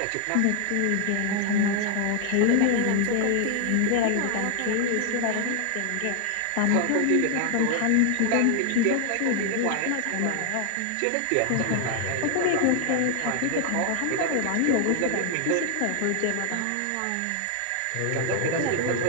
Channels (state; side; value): different; both; correlation 0.00